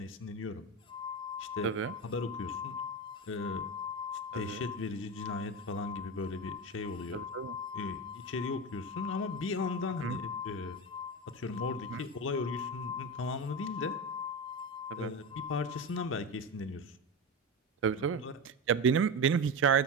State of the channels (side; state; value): both; normal; correlation 0.19